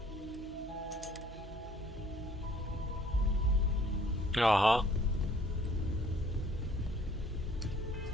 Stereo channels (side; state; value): both; normal; correlation 0.58